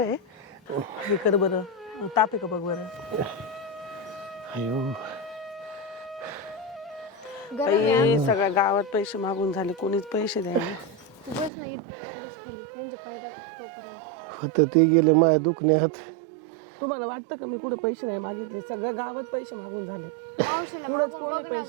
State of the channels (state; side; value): drops out; left; at 11.5 s